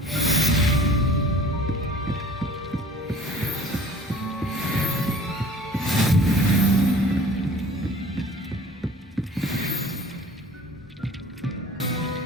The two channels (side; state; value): both; normal; correlation 0.47